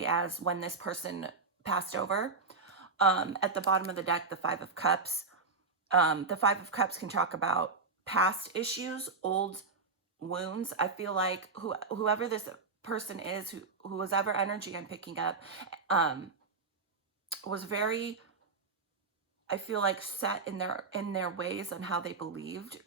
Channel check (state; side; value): quieter; left; 4.2 dB